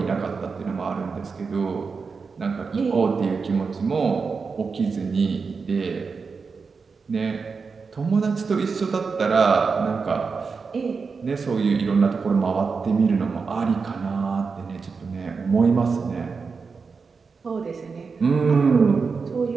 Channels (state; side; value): quieter; left; 5.0 dB